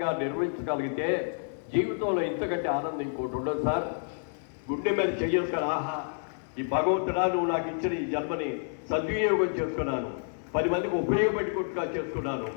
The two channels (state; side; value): silent; right; digital silence